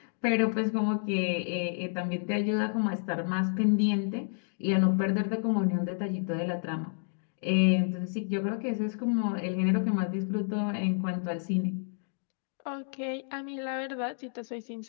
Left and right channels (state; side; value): silent; right; digital silence